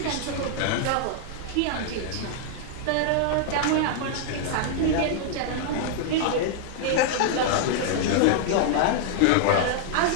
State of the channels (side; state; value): both; different; correlation -0.01